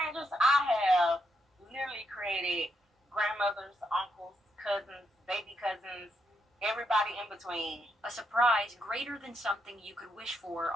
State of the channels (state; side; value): normal; both; correlation 0.79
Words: I have literally created grandmothers, uncles, cousins, baby cousins, everybody in between. A surprise greater than something you could wish for